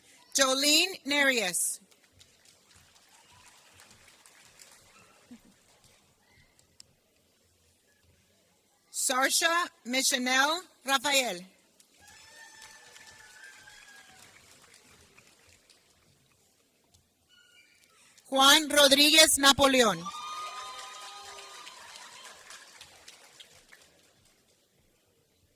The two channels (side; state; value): both; identical; correlation 1.00